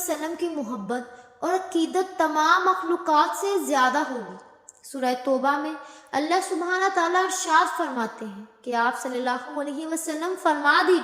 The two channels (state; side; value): identical; both; correlation 1.00